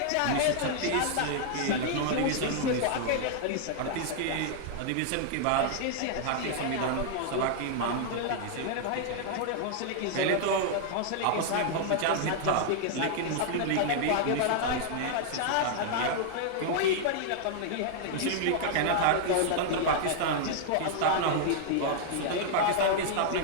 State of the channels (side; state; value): both; different; correlation -0.01